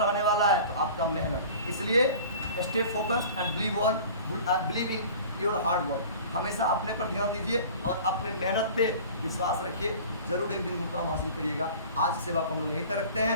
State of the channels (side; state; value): both; inverted; correlation -0.42